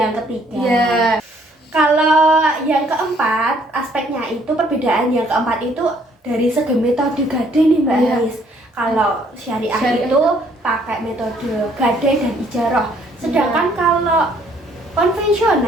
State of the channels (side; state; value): both; normal; correlation 0.64